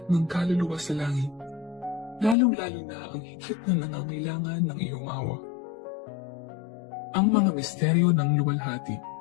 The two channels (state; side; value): drops out; right; at 2.4 s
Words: ng kaluluwa sa langit, lalong-lalo na ang higit na nangangailangan ng iyong awa. Ang mga misteryo ng luwalhati.